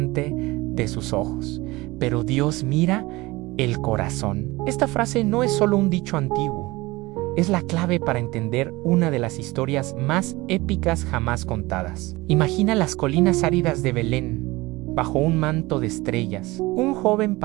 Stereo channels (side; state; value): left; quieter; 21.1 dB